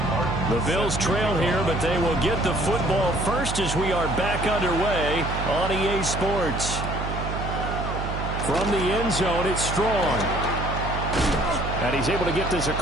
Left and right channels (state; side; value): noise; right; hum, 4 dB below the sound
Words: The Bills trail here, but they will get the football first as we are back underway on EA Sports. From the end zone, it's Strong. And he's able to get this